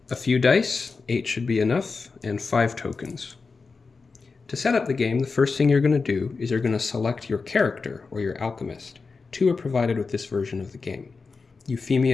A few dice, 8 should be enough, and 5 tokens. To set up the game, the first thing you're going to do is you're going to select your character, or your alchemist. 2 are provided with this version of the game:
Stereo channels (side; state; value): right; quieter; 4.5 dB